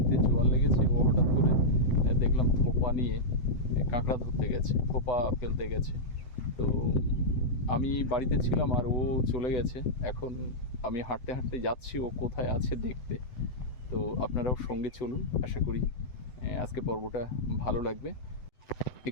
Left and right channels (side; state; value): right; late; 7.9 ms